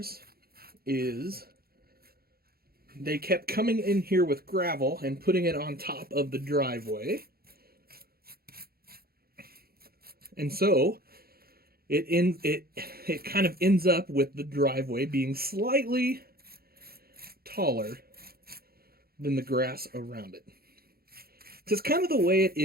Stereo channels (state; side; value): late; left; 0.44 ms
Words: is they kept coming in here with gravel and putting it on top of the driveway. And so it kind of ends up with the driveway being slightly taller than the grass around it. It's kind of the way it